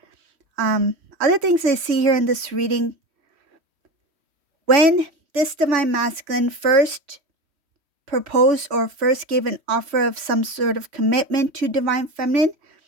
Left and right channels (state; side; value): late; left; 3.1 ms